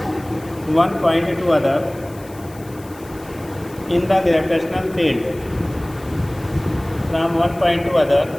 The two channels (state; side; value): noise; left; hiss, 23 dB below the sound